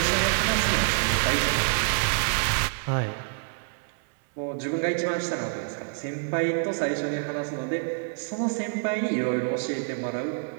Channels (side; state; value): left; silent; 60 dB below the other